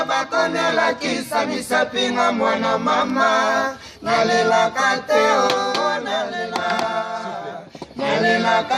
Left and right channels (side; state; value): both; identical; correlation 1.00